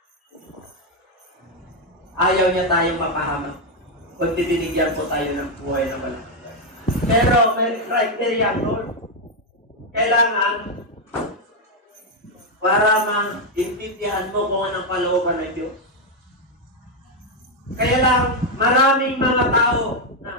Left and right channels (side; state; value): both; normal; correlation 0.03